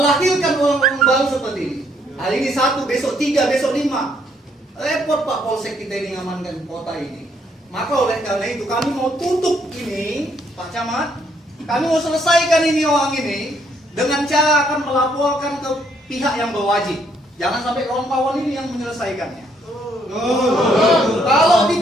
orang-orang baru seperti ini. Hari ini 1, besok 3, besok 5. Repot Pak Polsek kita ini ngamankan kota ini. Maka oleh karena itu kami mau tutup ini, Pak Camat. Kami mau selesaikan ini orang ini dengan cara akan melaporkan ke pihak yang berwajib. Jangan sampai kawan-kawan ini yang menyelesaikannya. Kalau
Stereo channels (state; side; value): normal; both; correlation 0.70